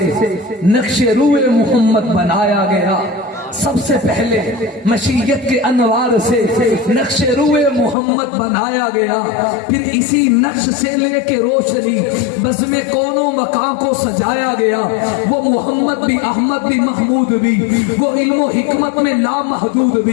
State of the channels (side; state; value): right; drops out; at 8.0 s